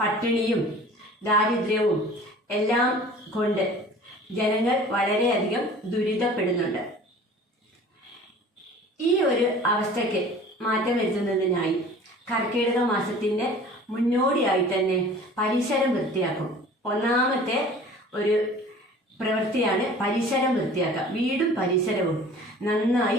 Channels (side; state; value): both; normal; correlation 0.45